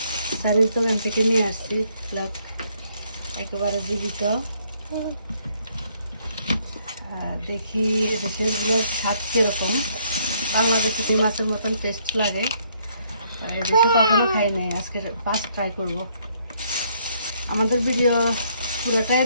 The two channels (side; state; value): both; inverted; correlation -0.69